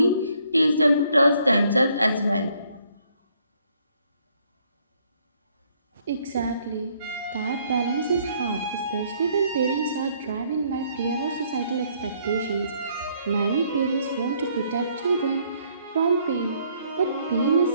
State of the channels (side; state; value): both; inverted; correlation -0.67